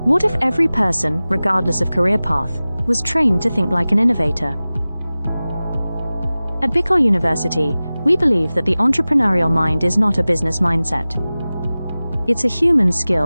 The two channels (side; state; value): both; inverted; correlation -0.98